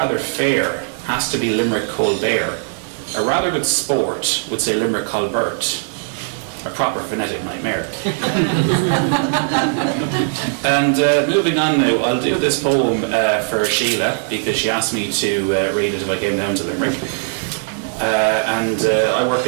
fair has to be Limerick Colbert. A rather good sport would say Limerick Colbert. A proper phonetic nightmare. And moving on now, I'll do this poem for Sheila, because she asked me to read it if I came down to Limerick. I work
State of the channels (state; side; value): silent; left; digital silence